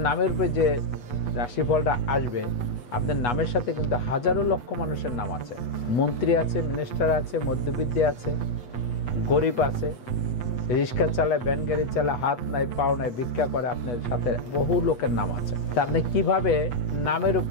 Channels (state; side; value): late; right; 8.2 ms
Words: নামের উপরে যে রাশিফলটা আসবে, আপনার নামের সাথে কিন্তু হাজারো লক্ষ মানুষের নাম আছে। মন্ত্রী আছে, মিনিস্টার আছে, মধ্যবিত্ত আছে, গরিব আছে, রিক্সা চালায়, ভ্যান গাড়ি চালায়, হাত নাই পাও নাই, ভিক্ষা করে, আপনার সাথে বহু লোকের নাম আছে। তা আপনি কিভাবে নামের